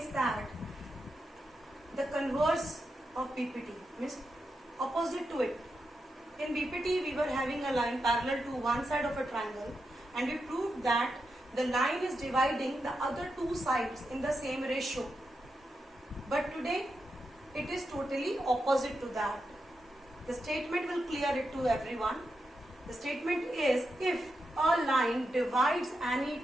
that the converse of BPT means opposite to it. In BPT we were having a line parallel to one side of a triangle, and we proved that the line is dividing the other two sides in the same ratio. But today it is totally opposite to that. The statement will clear it to everyone. The statement is, if a line divides any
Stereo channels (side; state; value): both; normal; correlation 0.87